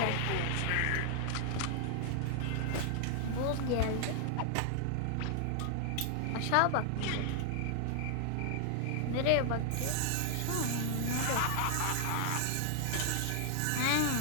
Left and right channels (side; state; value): both; different; correlation 0.00